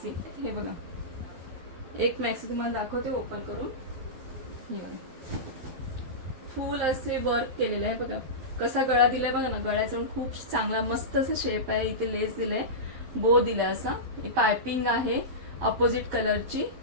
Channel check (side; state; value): left; late; 12 ms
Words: हे बघा एक मॅक्सी तुम्हाला दाखवते ओपन करून. फुल असे वर्क केलेले आहे बघा, कसा गळा दिलाय बघा ना. गळ्याचा खूप चांगला मस्त असं शेप आहे. इथे लेस दिलाय, बो दिलाय, असा पायपिंग आहे अपोजिट कलरची.